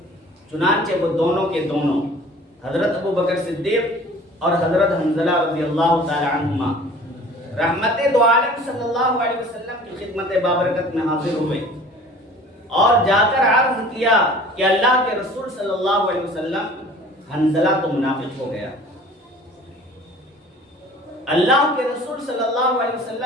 چنانچہ وہ دونوں کے دونوں، حضرت ابو بکر صدیق اور حضرت حنظلہ رضی اللہ تعالی عنہما، رحمت دو عالم صلی اللہ علیہ وسلم کی خدمت بابرکت میں حاضر ہوئے اور جا کر عرض کیا کہ اللہ کے رسول صلی اللہ علیہ وسلم، حنظلہ تو منافق ہو گیا۔ اللہ کے رسول صلی اللہ علیہ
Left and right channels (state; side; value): normal; both; correlation 0.47